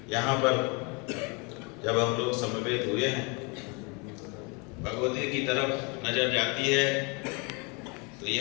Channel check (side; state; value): right; quieter; 30.9 dB